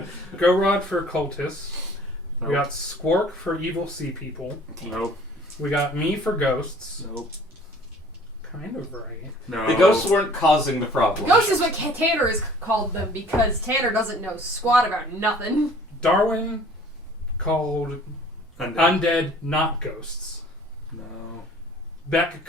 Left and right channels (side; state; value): both; normal; correlation 0.52